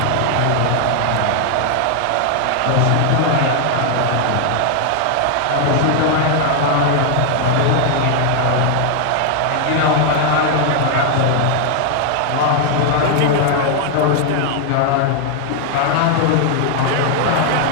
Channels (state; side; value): different; both; correlation 0.00